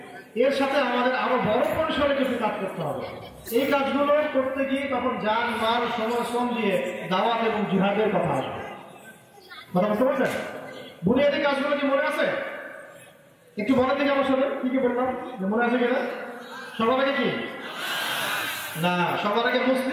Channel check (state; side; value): identical; both; correlation 1.00